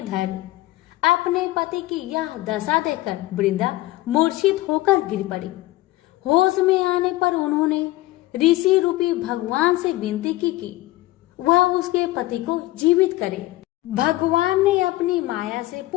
धड़। अपने पति की यह दशा देखकर वृंदा मूर्छित होकर गिर पड़ी। होश में आने पर उन्होंने ऋषि रूपी भगवान से विनती की कि वह उसके पति को जीवित करे। भगवान ने अपनी माया से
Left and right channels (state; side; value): quieter; right; 17.7 dB